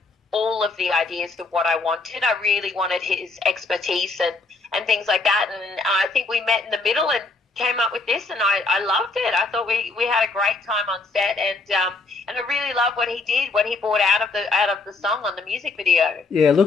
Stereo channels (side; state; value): right; quieter; 3.7 dB